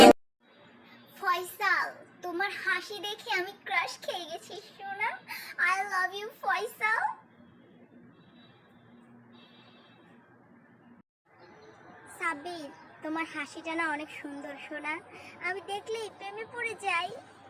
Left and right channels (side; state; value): both; identical; correlation 1.00